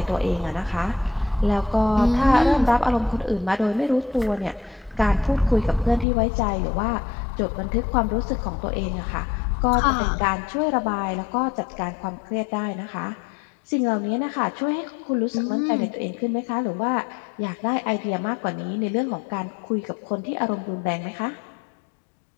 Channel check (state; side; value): drops out; right; at 6.1 s